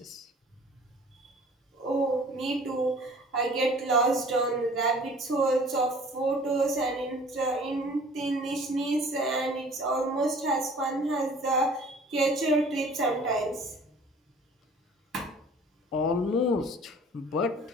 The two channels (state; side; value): normal; both; correlation 0.49